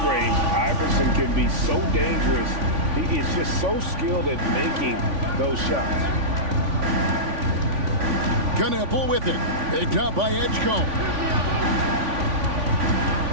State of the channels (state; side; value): late; left; 3.5 ms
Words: Iverson can be so dangerous. He is just so skilled at making those shots. Knueppel with it. Picked up by Edgecombe.